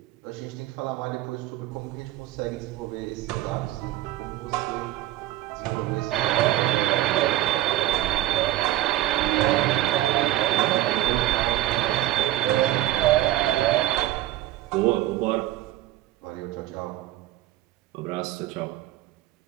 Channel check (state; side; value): quieter; left; 14.9 dB